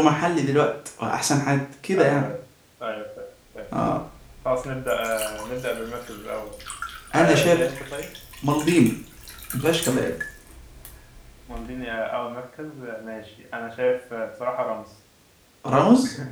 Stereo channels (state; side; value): identical; both; correlation 1.00